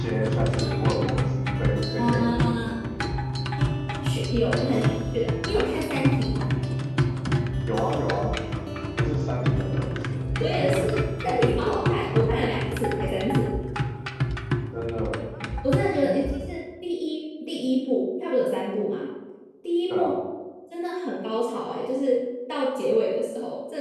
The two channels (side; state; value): both; identical; correlation 1.00